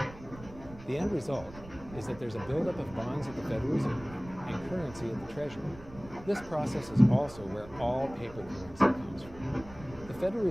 The end result is that there's a buildup of bonds at the Federal Reserve and currency at the Treasury. This process is also where all paper currency comes from. The Federal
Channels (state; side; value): noise; right; rumble, 17 dB below the sound